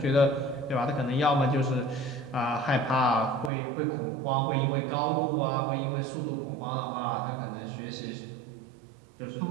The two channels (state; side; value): drops out; left; at 3.5 s